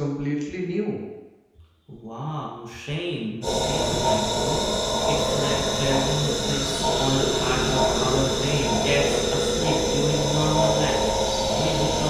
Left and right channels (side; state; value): both; identical; correlation 1.00